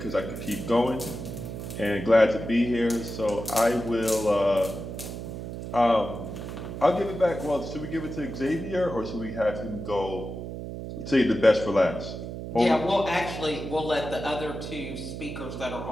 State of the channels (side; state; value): right; noise; hum, 8 dB below the sound